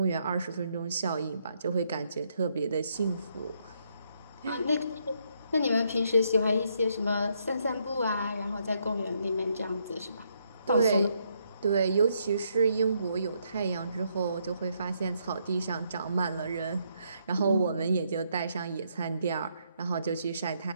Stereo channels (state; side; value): inverted; both; correlation -0.75